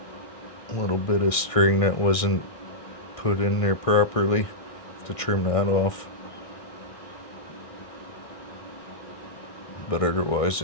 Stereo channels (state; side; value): late; right; 1.6 ms